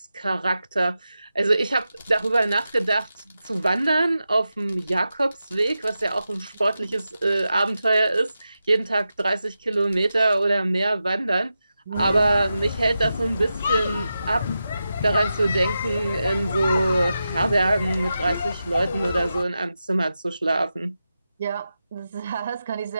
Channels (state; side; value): inverted; both; correlation -0.90